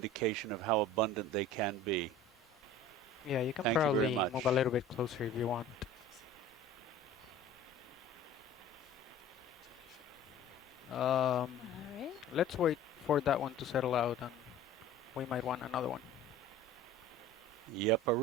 of how abundant they can be. Yeah, you can Thank you probably very much. move a little bit closer if you want. Alright. Let's wait for that one to settle out, and we might want another one.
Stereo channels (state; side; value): normal; both; correlation 0.42